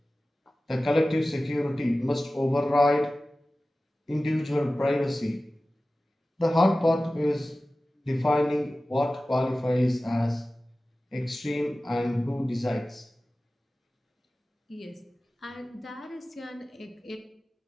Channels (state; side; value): normal; both; correlation 0.96